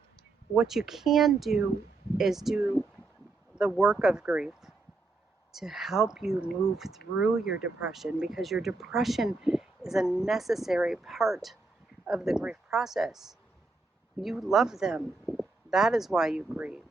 what you can do is do the work of grief to help you move through your depression, because your depression is a necessary part of the grief process. You love them. That is why you grieve.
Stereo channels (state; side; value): quieter; left; 3.5 dB